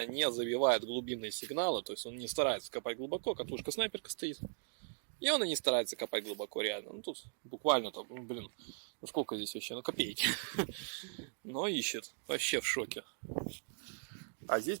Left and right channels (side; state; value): left; silent; digital silence